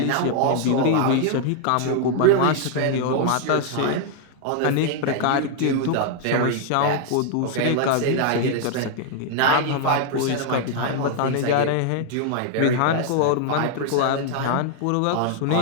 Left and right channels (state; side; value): different; both; correlation 0.00